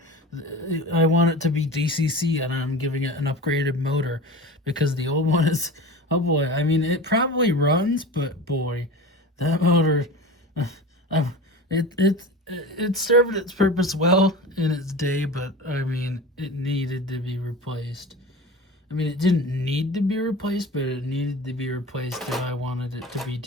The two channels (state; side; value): normal; both; correlation 0.33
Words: I want it to be DCC, and I'm giving it an upgraded motor because the old one is, oh boy. I mean, it probably runs, but boy, that motor, uh, it served its purpose well in its day, but I mean, it needed to be replaced. I mean, it didn't need to be replaced, but it needed to be replaced if I wanted it to be